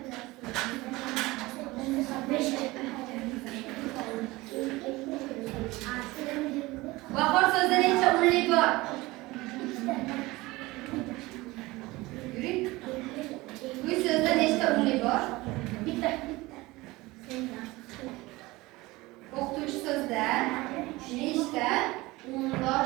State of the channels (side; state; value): left; quieter; 20.8 dB